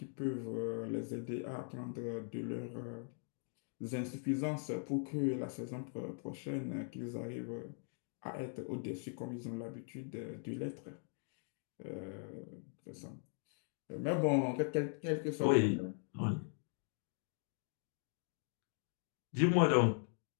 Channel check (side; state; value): right; silent; 51 dB below the other